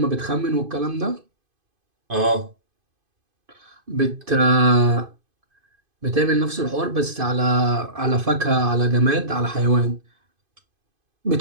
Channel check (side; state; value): left; late; 2.5 ms